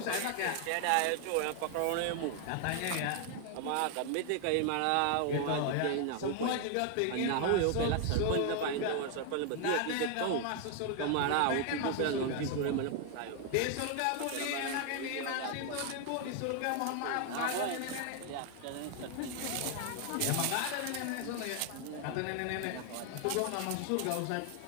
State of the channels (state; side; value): different; both; correlation 0.00